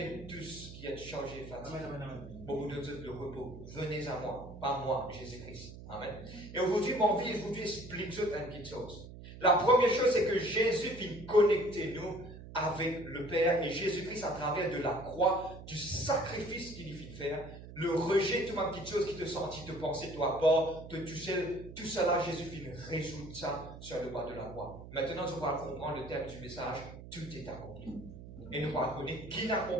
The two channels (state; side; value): noise; right; hum, 14 dB below the sound